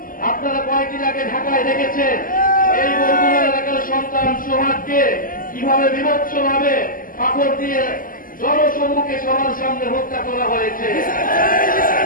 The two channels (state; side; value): late; right; 0.41 ms